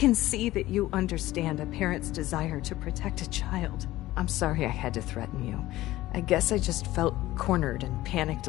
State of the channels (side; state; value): right; quieter; 16.5 dB